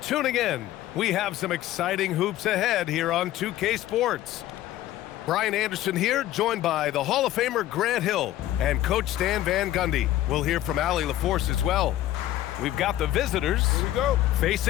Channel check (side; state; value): right; quieter; 13.8 dB